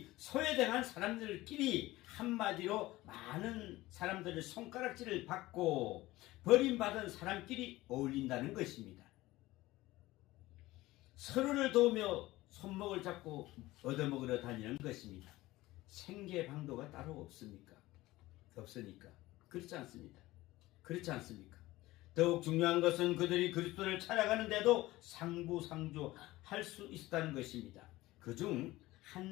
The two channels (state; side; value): quieter; right; 18.2 dB